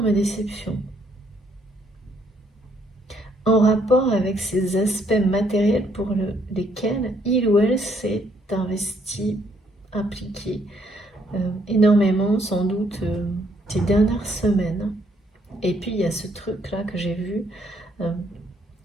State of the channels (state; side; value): normal; both; correlation 0.69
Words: déception. En rapport avec ces aspects matériels pour lesquels il ou elle s'est investi, impliqué énormément, sans doute, ces dernières semaines. Et puis, il y a ce truc-là que j'ai vu